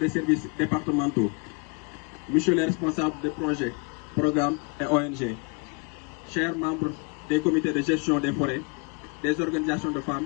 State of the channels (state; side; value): quieter; right; 33.3 dB